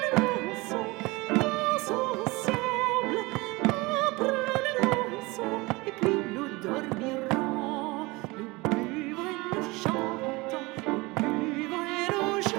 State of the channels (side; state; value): left; quieter; 23.3 dB